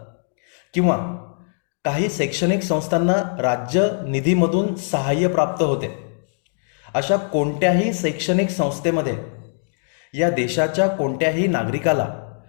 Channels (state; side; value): silent; right; digital silence